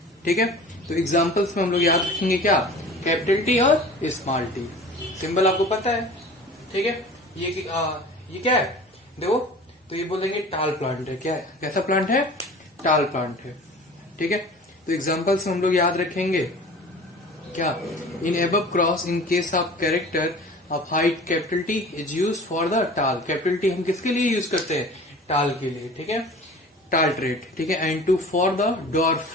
ठीक है। तो एग्जांपल्स में हम लोग याद रखेंगे क्या? Capital T और स्मॉल टी। सिंबल आपको पता है, ठीक है। ये क्या है? देखो, तो ये बोलेंगे टाल प्लांट है। क्या है? कैसा प्लांट है? टाल प्लांट है, ठीक है। तो एग्जांपल्स में हम लोग याद रखेंगे क्या? इन above cross in case of character of height capital T is used for the टाल। कैपिटल टी हम किसके लिए यूज करते हैं? टाल के लिए, ठीक है, टाल ट्रेट, ठीक है। And two for the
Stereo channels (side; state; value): both; normal; correlation 0.41